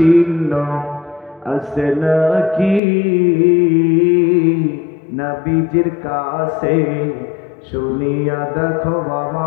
আছে নাকি নবীজির কাছে, শুনিয়া দেখো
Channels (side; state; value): right; drops out; at 2.8 s